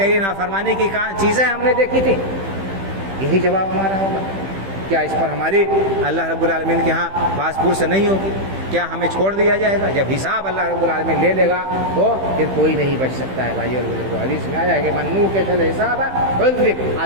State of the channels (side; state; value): left; late; 15 ms